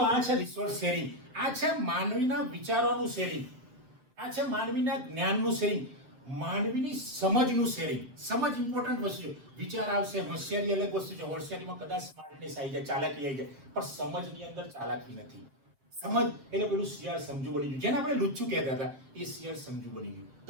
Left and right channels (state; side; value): late; left; 7.7 ms